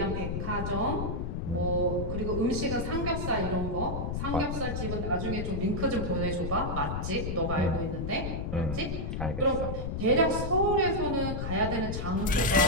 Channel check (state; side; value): noise; left; rumble, 3 dB below the sound